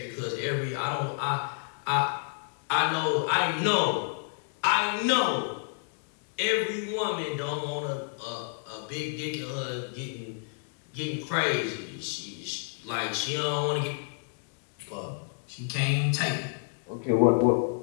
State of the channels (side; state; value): right; silent; 58 dB below the other